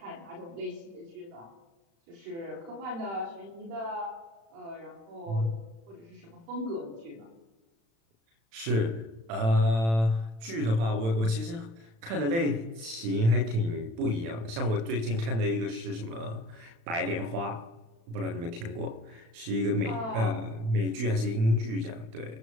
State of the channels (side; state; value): left; late; 36 ms